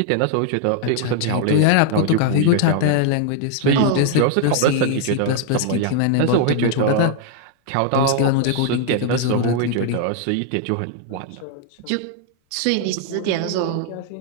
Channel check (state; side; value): different; both; correlation 0.00